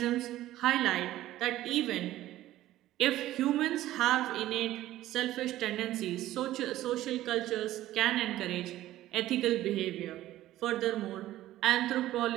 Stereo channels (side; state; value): left; quieter; 14.6 dB